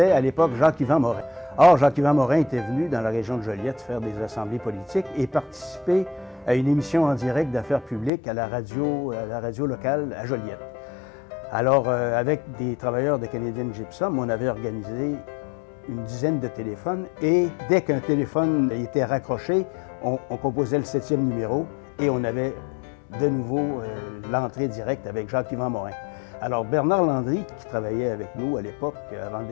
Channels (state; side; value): drops out; right; at 8.1 s